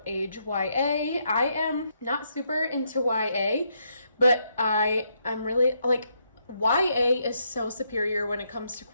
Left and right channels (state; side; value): inverted; both; correlation -0.77